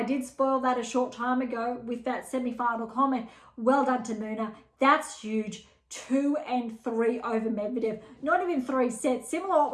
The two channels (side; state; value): both; identical; correlation 1.00